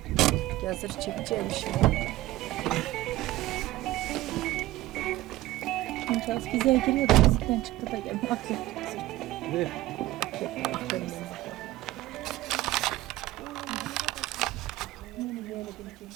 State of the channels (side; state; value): left; quieter; 16.8 dB